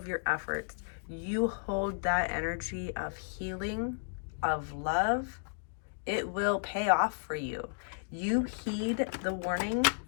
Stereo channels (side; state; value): right; silent; digital silence